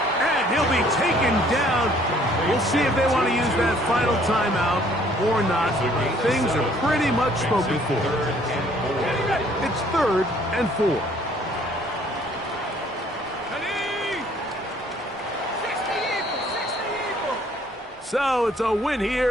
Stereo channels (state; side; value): normal; both; correlation 0.60